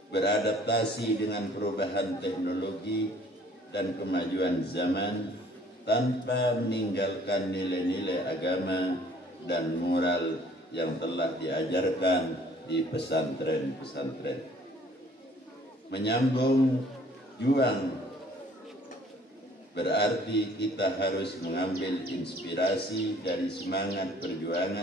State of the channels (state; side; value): normal; both; correlation 0.56